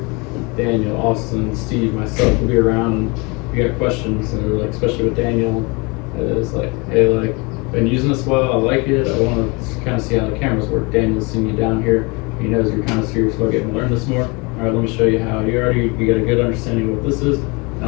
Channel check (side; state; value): right; quieter; 28.3 dB